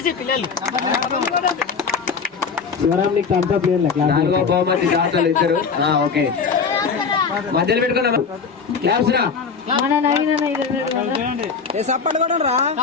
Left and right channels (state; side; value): quieter; right; 5.5 dB